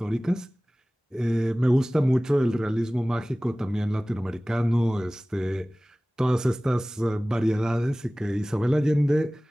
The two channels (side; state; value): both; normal; correlation 0.98